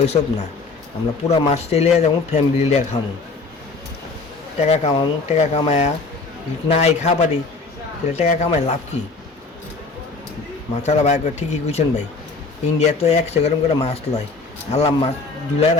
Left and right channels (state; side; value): quieter; right; 3.9 dB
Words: ওইসব না, আমরা পুরা মাছটাই লিয়ে যাবো, ফ্যামিলি লিয়ে খামো, টাকা কামাবো। টাকা কামায়া নাই খাবারই, তাহলে টাকা কামায় লাভ কি? মাথাটা ভাই ঠিকই কইছেন ভাই। ইন্ডিয়া তো 100 গ্রাম করে মাছ লয়, আল্লাহ মাছ জুলাই